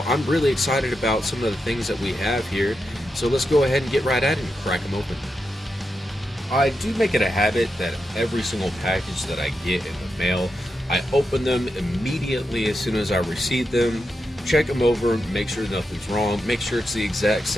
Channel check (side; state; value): both; normal; correlation 0.87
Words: I'm really excited about some of the things that we have here, so let's go ahead and get right at it and crack them open. I do make it a habit that every single package that I get in the mail, I open them immediately as soon as I receive them, check them over, make sure nothing's wrong, make sure it's the exact